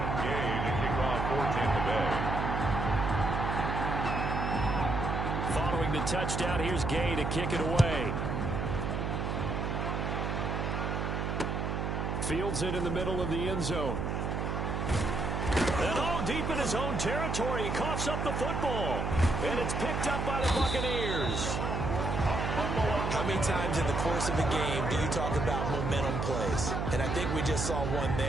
Gay to kick off for Tampa Bay. Following the touchdown, here's Gay to kick it away. Fields it in the middle of the end zone. And all deep in his own territory, he coughs up the football. And it's picked up by the Buccaneers. How many times in the course of a game do you talk about momentum plays? And I think we just saw one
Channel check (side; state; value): right; noise; hum, 1 dB below the sound